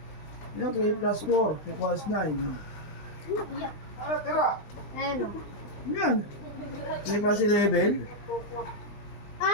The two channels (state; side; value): late; right; 20 ms